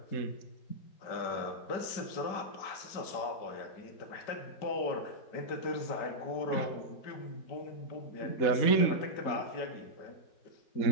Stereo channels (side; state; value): right; late; 5.1 ms